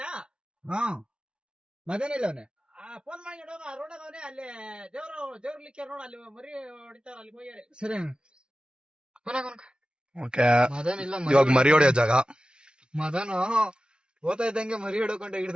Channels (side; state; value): left; late; 0.054 ms